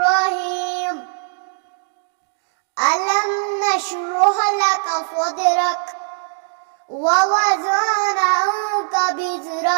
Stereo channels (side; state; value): left; silent; digital silence